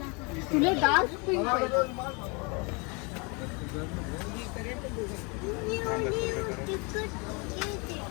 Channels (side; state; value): right; quieter; 30.9 dB